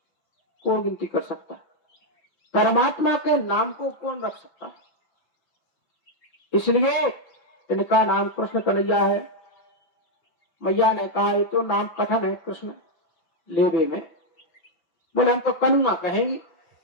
कौन गिनती कर सकता है? परमात्मा के नाम को कौन रख सकता है? इसलिए इनका नाम कृष्ण कन्हैया है। मैया ने कहा ये तो नाम कठिन है कृष्ण लेबे में। बोले हम तो कन्हुआ कहेंगे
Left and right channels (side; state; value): right; late; 5.6 ms